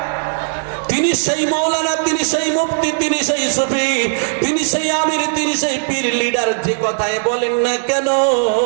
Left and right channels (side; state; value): left; silent; digital silence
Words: তিনি সেই মাওলানা, তিনি সেই মুফতি, তিনি সেই সুফি, তিনি সেই আমির, তিনি সেই পীর লিডার, যে কথায় বলেন না কেন